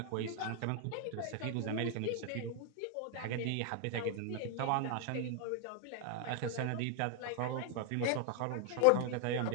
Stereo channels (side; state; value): both; different; correlation 0.00